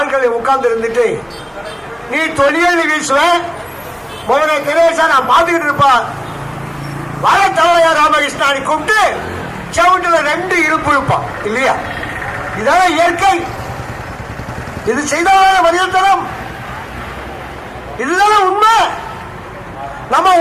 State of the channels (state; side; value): identical; both; correlation 1.00